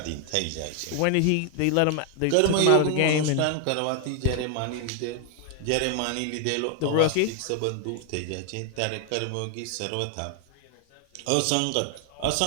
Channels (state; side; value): different; both; correlation 0.00